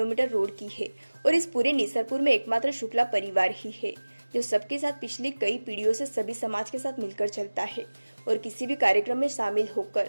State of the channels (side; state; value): both; inverted; correlation -1.00